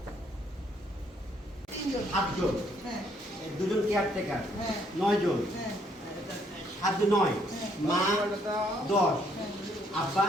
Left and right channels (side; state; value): both; normal; correlation 0.68